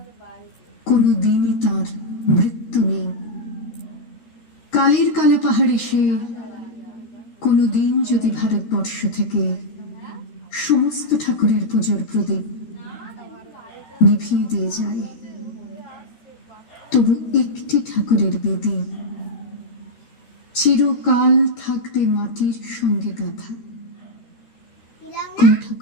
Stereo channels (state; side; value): late; right; 13 ms